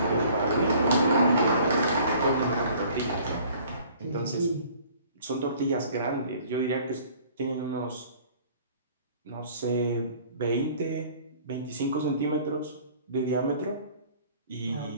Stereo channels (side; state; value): both; inverted; correlation -0.52